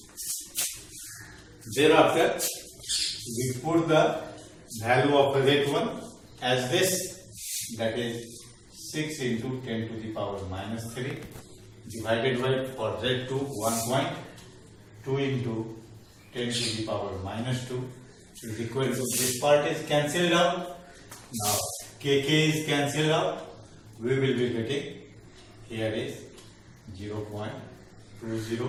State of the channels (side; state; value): both; identical; correlation 1.00